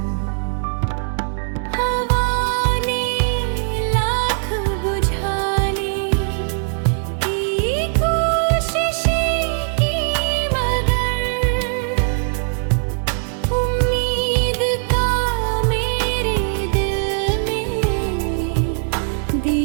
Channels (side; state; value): left; silent; 66 dB below the other